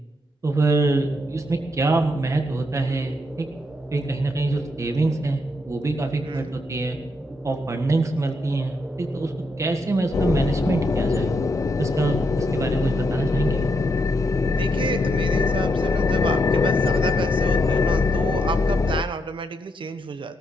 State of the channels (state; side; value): normal; both; correlation 0.80